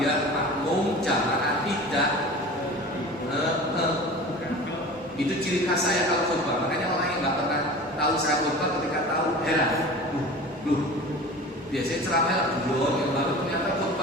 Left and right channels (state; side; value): normal; both; correlation 0.37